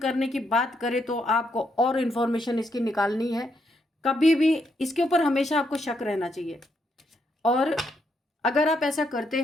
की बात करें तो आपको और इन्फॉर्मेशन इसकी निकालनी है। कभी भी इसके ऊपर हमेशा आपको शक रहना चाहिए। और अगर आप ऐसा करते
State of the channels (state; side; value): normal; both; correlation 0.77